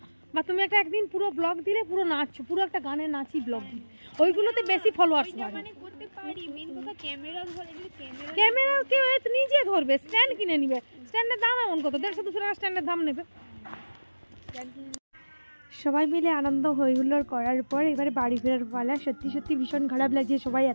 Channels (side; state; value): both; inverted; correlation -1.00